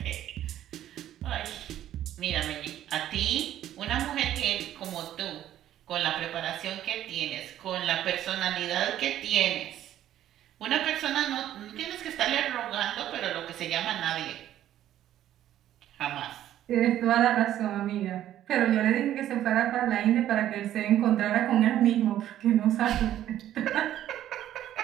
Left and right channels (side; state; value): left; quieter; 12.1 dB